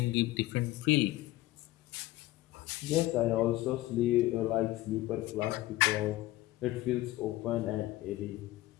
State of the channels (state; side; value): quieter; right; 17.1 dB